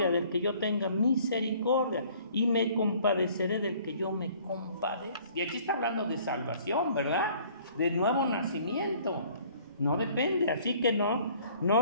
del que yo tenga misericordia y me compadeceré del que yo me compadezca. Y aquí está hablando de salvación, ¿verdad? De nuevo nacimiento. No depende, así que no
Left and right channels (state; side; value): inverted; both; correlation -0.56